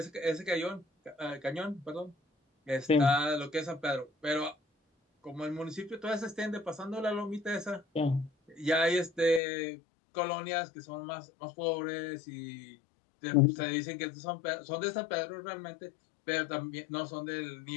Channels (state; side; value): drops out; right; at 9.4 s